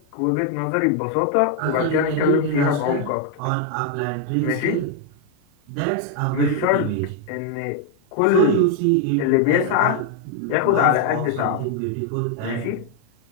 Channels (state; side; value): different; both; correlation 0.00